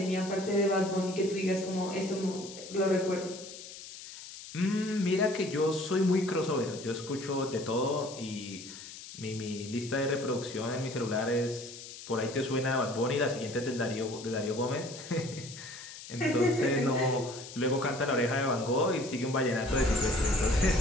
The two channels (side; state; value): left; noise; hiss, 13 dB below the sound